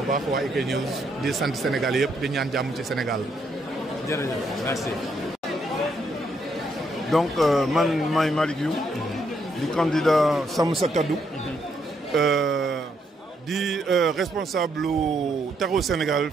baax waa IK News di sant Sénégal yëpp di ñaan jàmm ci Sénégal. jërëjëf merci. donc man maay Malick Youm di candidat Sàmm Sa Kàddu di responsable lu Taxawu Sénégal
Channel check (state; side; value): normal; both; correlation 0.75